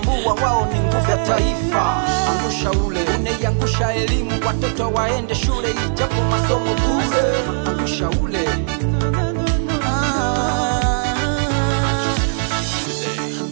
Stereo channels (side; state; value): left; silent; 67 dB below the other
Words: wao ni nguvu ya taifa. Angusha ule unaiangusha elimu watoto waende shule ijapo masomo bure. Angusha ule